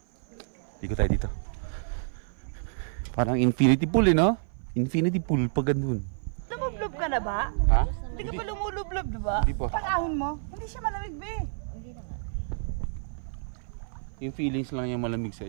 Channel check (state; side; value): silent; left; 56 dB below the other